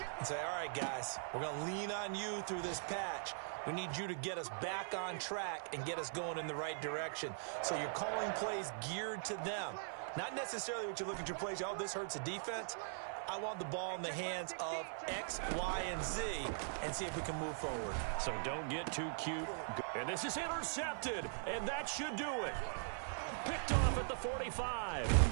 and say, all right, guys, we're going to lean on you through this patch. We need you to get us back on track and get us going in the right direction. So you're calling plays geared to them. Not necessarily what you look at your plays, oh, this hurts the defense. I want the ball in the hands of X, Y, and Z and see if we can move forward. So don't get too cute. And this is intercepted, and that should do it. Picked off at the 45.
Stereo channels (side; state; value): left; silent; 50 dB below the other